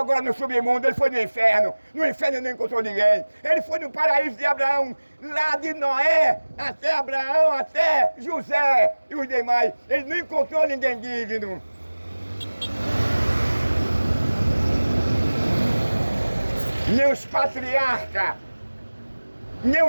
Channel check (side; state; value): both; inverted; correlation -1.00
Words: no submundo, ele foi no inferno. No inferno não encontrou ninguém. Ele foi no paraíso de Abraão, lá de Noé, até Abraão, até José e os demais. Ele não encontrou ninguém digno. Nem os patriarcas, nem